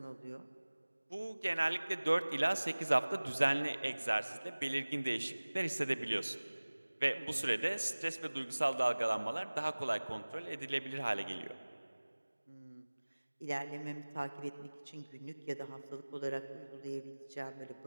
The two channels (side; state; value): both; inverted; correlation -1.00